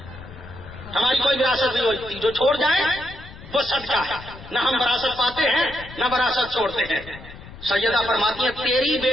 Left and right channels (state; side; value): noise; left; rumble, 16 dB below the sound